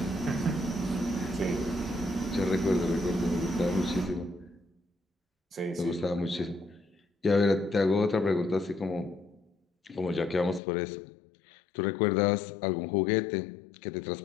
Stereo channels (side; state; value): right; drops out; at 10.6 s